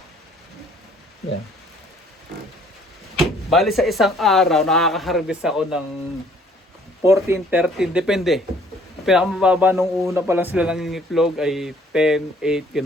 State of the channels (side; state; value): both; normal; correlation 0.59